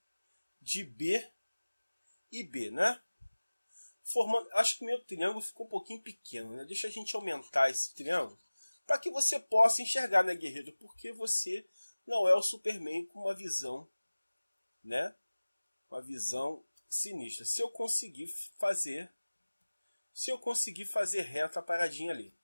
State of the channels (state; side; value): inverted; both; correlation -1.00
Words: de B e B, né? Formando, acho que o meu triângulo ficou um pouquinho pequeno, né? Deixa a gente aumentar esse triângulo para que você possa enxergar, né, guerreiro? Porque você não é o Superman com uma visão, né? Uma visão sinistra. Se eu conseguir fazer reta a paradinha ali.